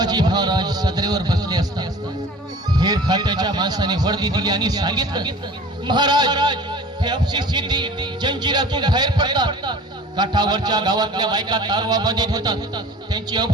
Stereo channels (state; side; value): normal; both; correlation 0.43